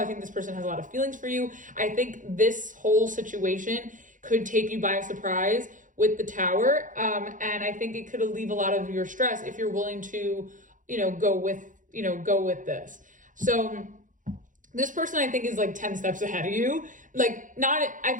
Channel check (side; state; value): left; late; 0.38 ms